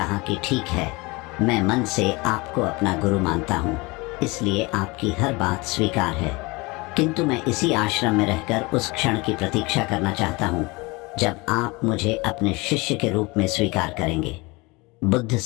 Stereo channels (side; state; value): right; quieter; 24.9 dB